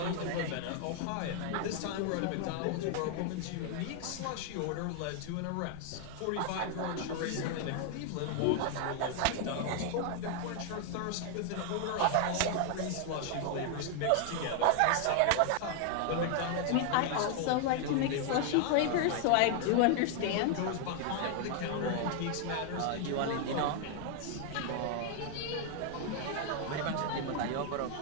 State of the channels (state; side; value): different; both; correlation 0.00